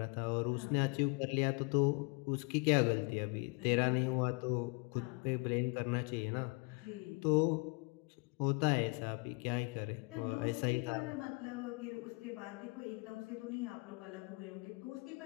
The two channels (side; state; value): right; quieter; 30.6 dB